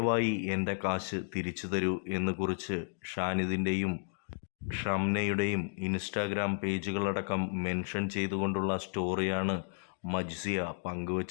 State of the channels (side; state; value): right; silent; digital silence